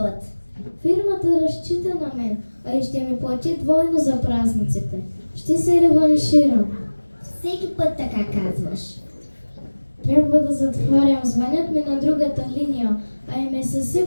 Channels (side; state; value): both; inverted; correlation -1.00